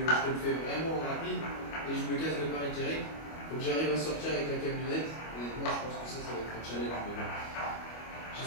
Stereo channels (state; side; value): late; right; 25 ms